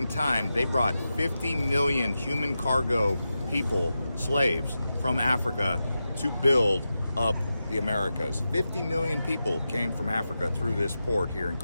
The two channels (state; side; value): inverted; both; correlation -0.91